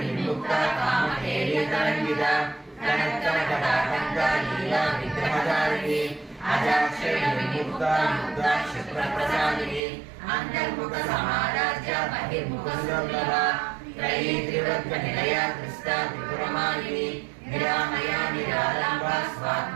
कामहेलितरङ्गिता कनत्कनकटाकन्ता लीला विग्रहधारिणी अजाक्षरविमुक्ता मुक्ता क्षिप्रप्रसादिनी अन्तर्मुखसमाराज्या बहिर्मुखसुलभा त्रयी त्रिवृत्तनिलया कृष्टा त्रिपुरमालिनी निरामया निरालम्बा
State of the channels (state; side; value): drops out; left; at 9.8 s